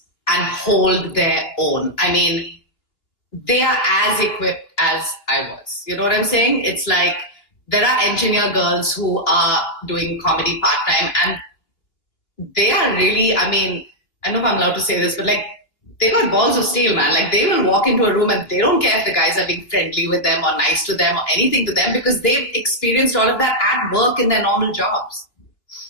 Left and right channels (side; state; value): right; late; 3.0 ms